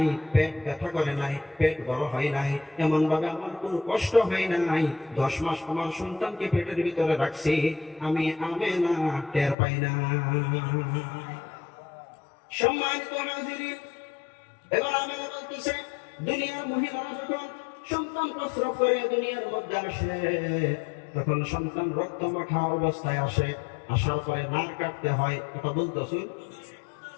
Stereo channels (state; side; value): drops out; right; at 9.6 s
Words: পেট ব্যথা করে নাই, পেট বড় হয় নাই, এমন ভাবে আমার কোনো কষ্ট হয় নাই। 10 মাস আমার সন্তানকে পেটের ভিতরে রাখছি, আমি আমেনা টের পাই না। সম্মানিত হাজিরিন, এবার আমি বলতেছে, দুনিয়ার মহিলারা যখন সন্তান প্রসব করে দুনিয়ার মধ্যে আসে, তখন সন্তান রক্ত মাখা অবস্থায় আসে। আসার পরে নার কাটতে হয়, কথা বলতেছি।